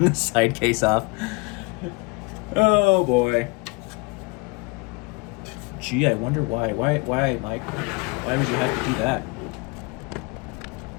side case off. Oh, boy. Gee, I wonder why. Why, Mike? Why would you have to do that?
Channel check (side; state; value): right; quieter; 28.8 dB